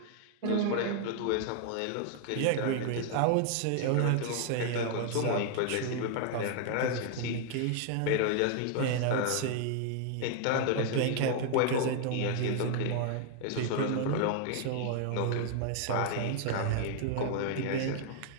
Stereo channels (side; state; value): both; different; correlation 0.00